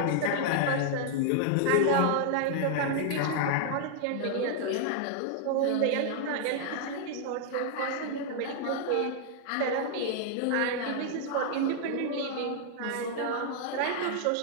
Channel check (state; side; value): different; both; correlation -0.01